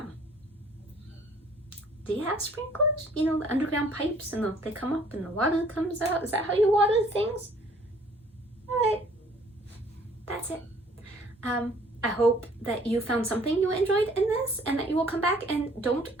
do you have sprinklers? You know, the underground pipes and they come up and the water comes out. Is that how you water things? All right, that's it. I hope that you found something you enjoyed in this and that you will come back and don't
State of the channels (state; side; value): normal; both; correlation 0.57